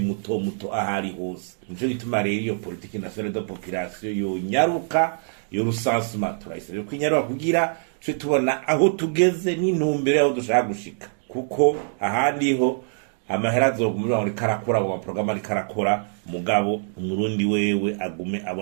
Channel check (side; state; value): left; silent; digital silence